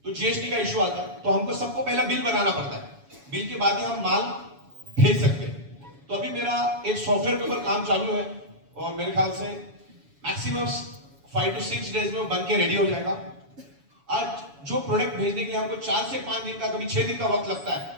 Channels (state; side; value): late; left; 7.1 ms